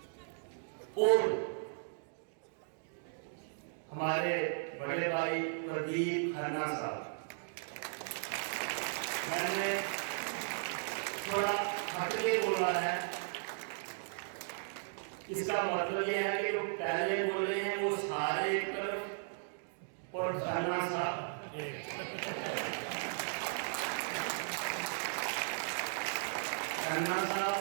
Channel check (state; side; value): silent; left; digital silence